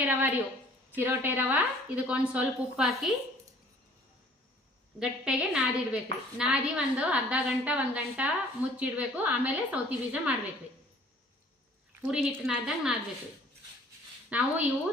ರವಾ ರೀ. ಚಿರೋಟೆ ರವಾ ಇದಕ್ಕೊಂದು ಸ್ವಲ್ಪ ಉಪ್ಪು ಹಾಕಿ ಗಟ್ಟೆಗೆ ನಾದಿಡ್ಬೇಕ್ರಿ. ನಾದಿ ಒಂದು ಅರ್ಧ ಗಂಟೆ 1 ಗಂಟೆ ಮುಚ್ಚಿಡ್ಬೇಕು. ಆಮೇಲೆ ಸೌತಿ ಬೀಜ ಮಾಡ್ಬೇಕ್ರಿ. ಪೂರಿ ಹಿಟ್ಟು ನಾದ್ದಂಗೆ ನಾದ್ಬೇಕ್ರಿ. ನಾವು ಇವು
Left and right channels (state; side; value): normal; both; correlation 0.54